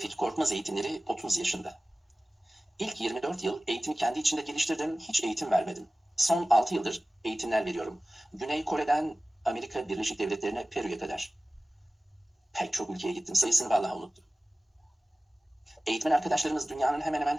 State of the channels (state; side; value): normal; both; correlation 0.97